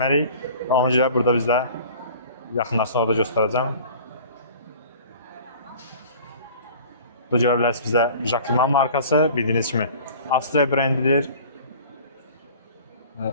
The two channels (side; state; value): both; inverted; correlation -0.45